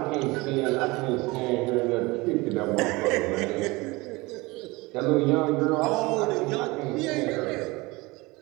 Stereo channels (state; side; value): quieter; left; 23.2 dB